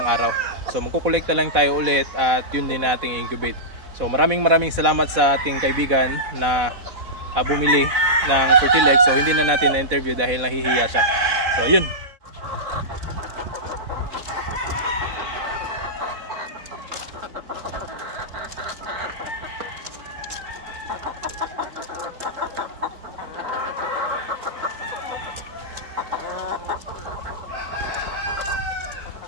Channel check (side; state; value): left; late; 4.1 ms